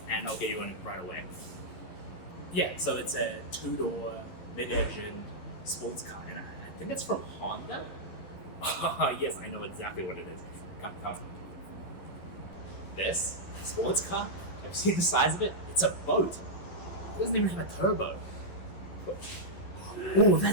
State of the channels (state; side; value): late; right; 11 ms